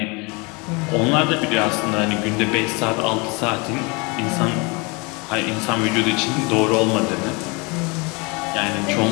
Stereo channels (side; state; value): right; quieter; 28.6 dB